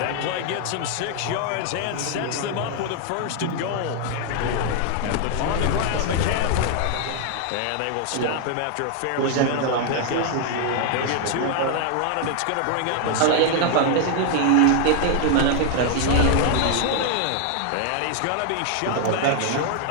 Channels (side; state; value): both; different; correlation 0.00